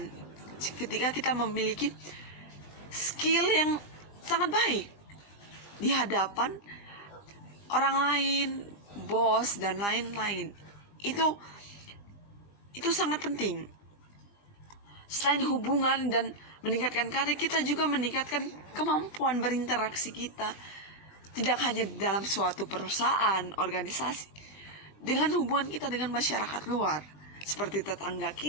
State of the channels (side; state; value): right; late; 20 ms